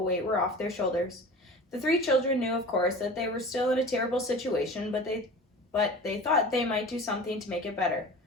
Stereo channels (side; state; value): both; normal; correlation 0.38